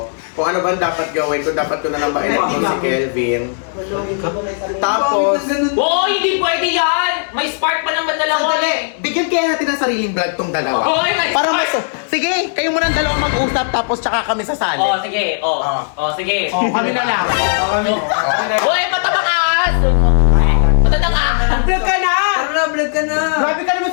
kung ano bang dapat gawin, kung dapat ko na lang ba i-let go si Kelvin. Tapos, Oo, hindi pwede yan! May spark pa naman dalawa eh! sandali, bigyan kaya natin ng sariling vlog tong dalawa. Oy, may Para spark! sige, kayo muna ang dalawa mag-usap tapos tsaka kami sasali. Oh, sige. Sige. Oh, kami na lang. Uy, matabang ahas! Matabang ahas! Vlog ka na! Tara na, vlog ka na. Grabe ka naman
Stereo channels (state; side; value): silent; right; digital silence